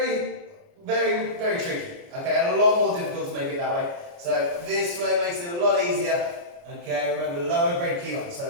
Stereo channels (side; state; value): left; late; 29 ms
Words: very, very tricky. Okay, and a lot more difficult to make it that way. So this way makes it a lot easier. Okay, remember lower grade Kihon,